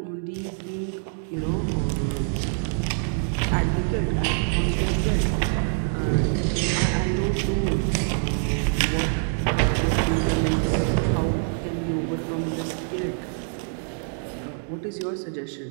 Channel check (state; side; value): silent; left; 61 dB below the other